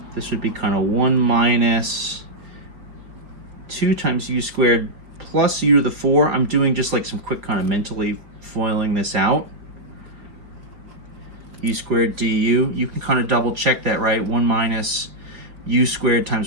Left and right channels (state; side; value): late; left; 4.4 ms